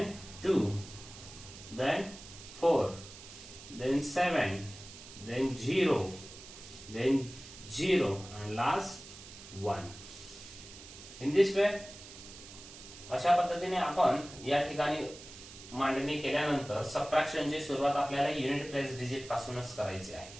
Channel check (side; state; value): right; noise; hiss, 16 dB below the sound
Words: 2, then 4, then 7, then 0, then 0 and last 1. In this way, अशा पद्धतीने आपण या ठिकाणी मांडणी केल्यानंतर सबट्रॅक्शनची सुरुवात आपल्याला युनिट प्लेस डिजिट पासूनच करायची आहे.